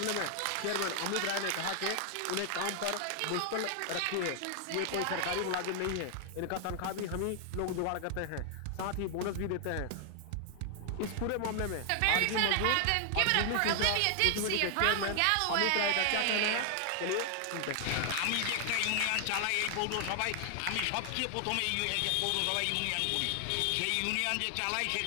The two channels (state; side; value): different; both; correlation 0.00